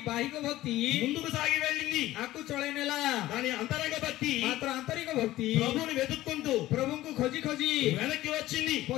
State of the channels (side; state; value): right; quieter; 15.8 dB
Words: भक्ति ముందుకు సాగి వెళ్ళింది, आकु चढाइनेला। కానీ అంతరంగ భక్తి मात्र आन्तरिक भक्ति ప్రభువుని వెతుక్కుంటూ प्रभुଙ୍କୁ खोजी खोजी వెనక్కి వచ్చింది.